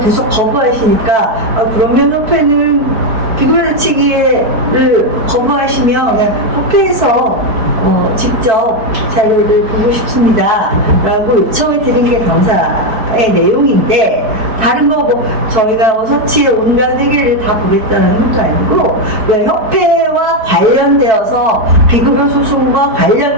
거부하시니까 그러면 협회는 비급여 대책위를 거부하시면 그냥 협회에서 직접 자료를 보고 싶습니다 라고 요청을 드린 게 감사의 내용인데 다른 거 저희가 서치의 온갖 회계를 다 보겠다는 것도 아니고 협회와 관련되어서 비급여 소송과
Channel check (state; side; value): late; left; 4.6 ms